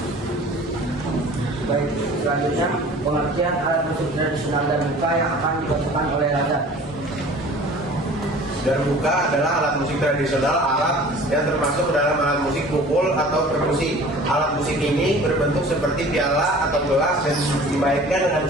Baik, selanjutnya pengertian alat musik tradisional darbuka yang akan dibacakan oleh Raja. Darbuka adalah alat musik tradisional Arab yang termasuk dalam alat musik pukul atau perkusi. Alat musik ini berbentuk seperti piala atau gelas dan dimainkan dengan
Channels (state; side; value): normal; both; correlation 0.45